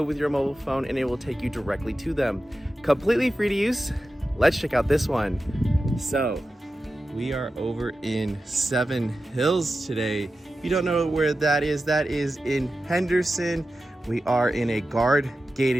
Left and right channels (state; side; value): normal; both; correlation 0.92